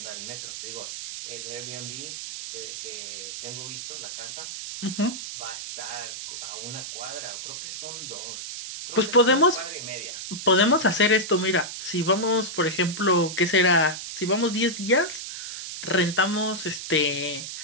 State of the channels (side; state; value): right; noise; hiss, 8 dB below the sound